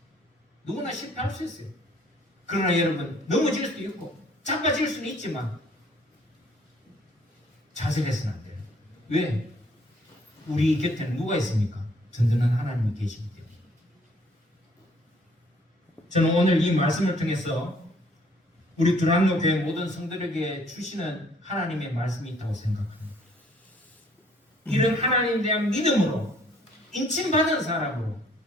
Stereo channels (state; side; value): normal; both; correlation 0.61